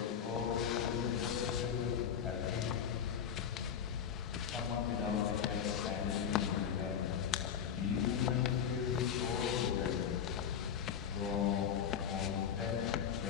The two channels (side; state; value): right; quieter; 8.1 dB